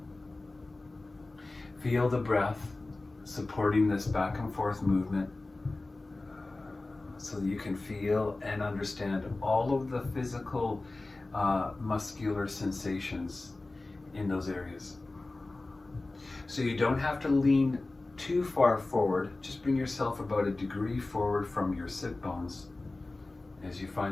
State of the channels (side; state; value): right; quieter; 3.1 dB